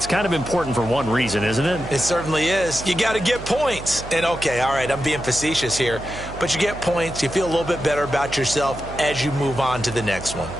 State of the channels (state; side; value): noise; right; hum, 12 dB below the sound